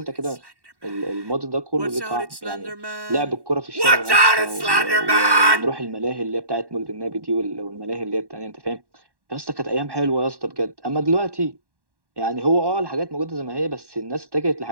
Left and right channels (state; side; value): late; left; 1.1 ms